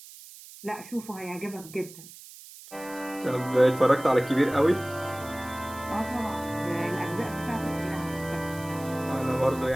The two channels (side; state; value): right; noise; hiss, 17 dB below the sound